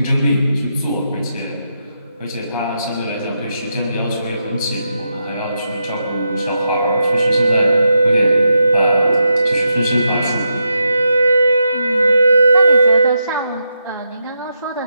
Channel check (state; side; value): inverted; both; correlation -0.84